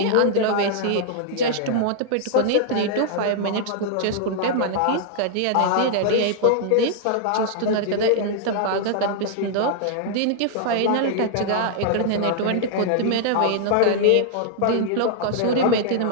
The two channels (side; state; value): both; different; correlation -0.01